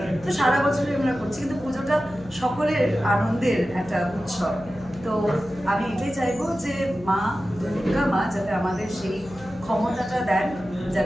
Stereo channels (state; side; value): noise; left; hum, 20 dB below the sound